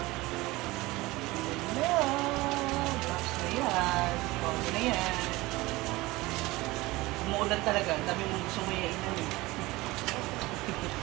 Umuulan talaga. Ang dami mong gusto mo iainan eh.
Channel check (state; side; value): quieter; left; 20.5 dB